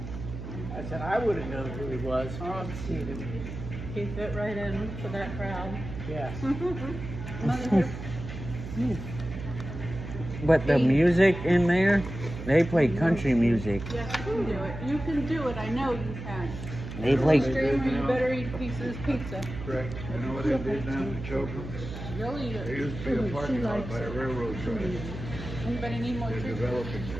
I said, I would have known who he was. I've seen him. He fit right in to that crowd. Yes. But the music in there, they play country music. Yes, you can do it. You can do it. I know you can. They play. Streamer, you better eat pieces pizza. Correct. You know what they did down in Chocum? Really There good. used to be a parking lot by a railroad track. Anybody need more They're tea? developing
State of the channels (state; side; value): noise; right; hum, 9 dB below the sound